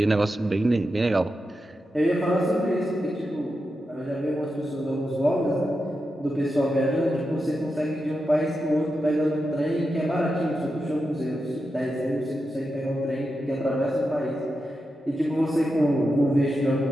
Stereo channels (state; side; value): normal; both; correlation 0.89